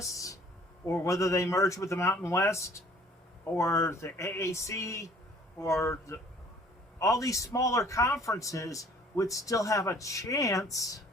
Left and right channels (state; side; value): normal; both; correlation 0.55